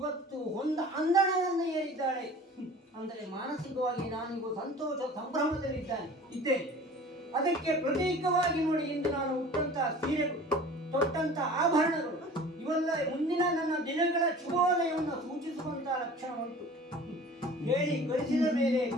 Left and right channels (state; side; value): normal; both; correlation 0.44